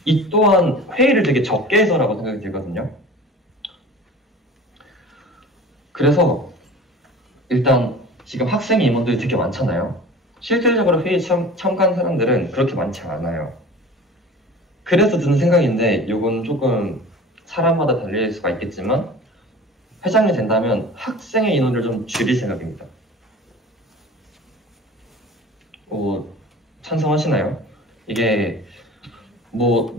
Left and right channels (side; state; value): both; normal; correlation 0.40